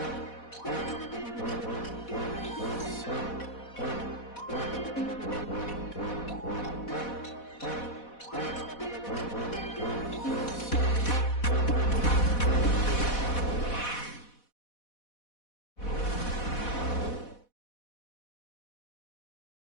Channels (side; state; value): right; late; 4.1 ms